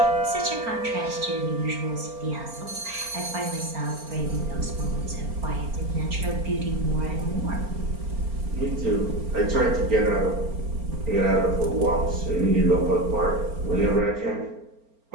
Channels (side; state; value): left; late; 4.4 ms